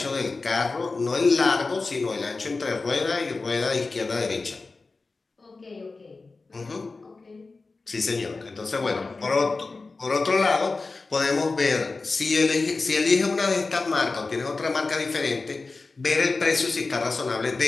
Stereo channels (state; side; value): quieter; right; 3.8 dB